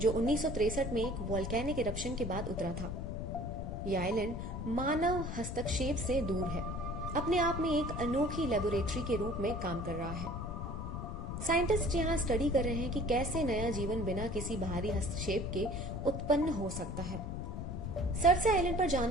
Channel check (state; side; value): noise; left; rumble, 5 dB below the sound